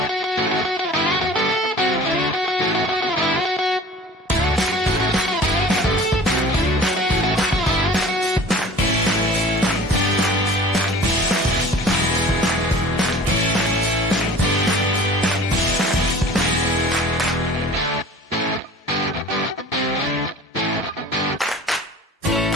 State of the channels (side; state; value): both; normal; correlation 0.44